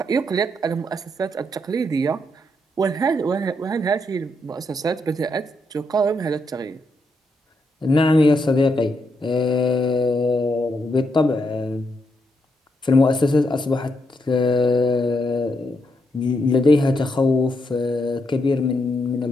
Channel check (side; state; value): both; normal; correlation 0.80